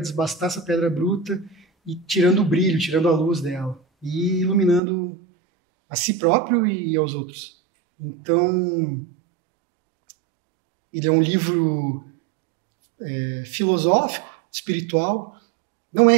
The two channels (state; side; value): drops out; left; at 4.8 s